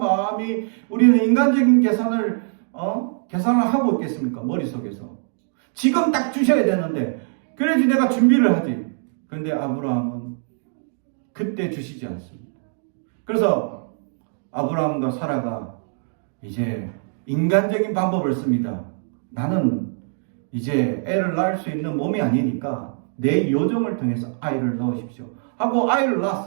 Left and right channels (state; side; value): silent; left; digital silence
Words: 우리는 인간적인 계산을 하고 있겠습니까? 머릿속에서. 지금 딱 주셔야 되는데 그래야지 내가 준비를 하지. 근데 아브라함은 그때 주시지 않습니다. 그래서 아브라함과 사라가 이제 인간적인 방법을 씁니다. 나는 이제 애를 낳을 수 있는 몸이 아니니까 내 요정을 통해서 아이를 넣으십시오 하고 아이를